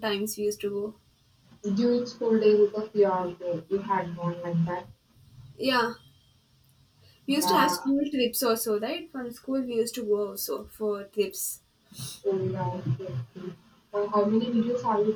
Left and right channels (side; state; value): both; identical; correlation 1.00